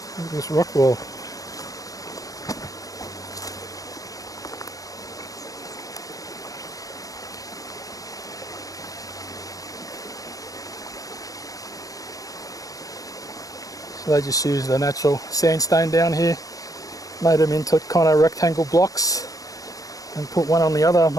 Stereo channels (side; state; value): right; late; 0.17 ms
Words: Look at this rock wall. So they just used the natural sandstone down here, made them into kind of rectangle blocks and put one on the other.